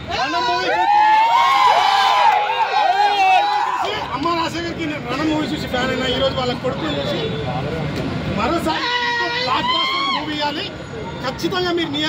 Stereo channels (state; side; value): identical; both; correlation 1.00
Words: మూవీ అమ్మ రాజశేఖర్కి నేను రణం మూవీ చూసి ఫ్యాన్ అయినా. ఈరోజు వాళ్ళ కొడుకుని చూసి మరోసారి బ్లాక్ బాస్టర్ మూవీ ఇవ్వాలి. ఖచ్చితంగా మీరు